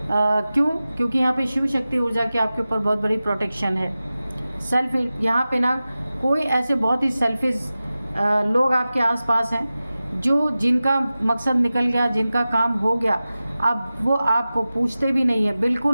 क्यों? क्योंकि यहाँ पे शिव शक्ति ऊर्जा की आपके ऊपर बहुत बड़ी प्रोटेक्शन है। सेल्फ यहाँ पे ना कोई ऐसे बहुत ही सेल्फिश लोग आपके आसपास हैं, जो जिनका मकसद निकल गया, जिनका काम हो गया, अब वो आपको पूछते भी नहीं है,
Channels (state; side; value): inverted; both; correlation -0.95